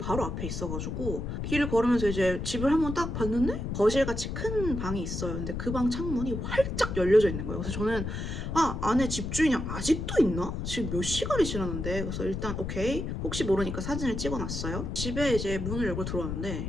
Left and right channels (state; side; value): noise; left; rumble, 4 dB below the sound